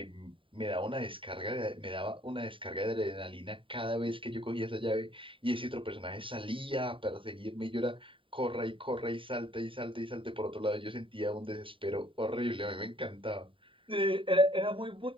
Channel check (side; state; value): left; late; 0.25 ms